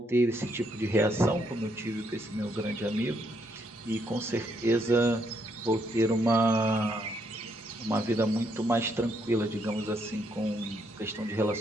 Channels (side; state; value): both; normal; correlation 0.74